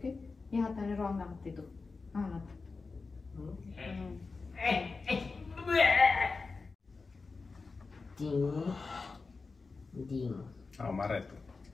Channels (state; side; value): quieter; right; 4.2 dB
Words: या हाताने रॉंग आणते तू हा ना Ding. Oh, marah itu.